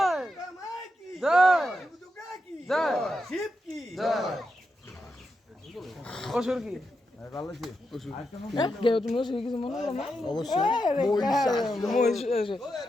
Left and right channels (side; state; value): both; normal; correlation 0.86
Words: দুর্গা মাই কি জয় দুর্গা কি জয় শিব কি জয় অসুর কি ভালো আছে কেউ তুমি অসুর কিছু মনে করো না অবশ্যই মহিষ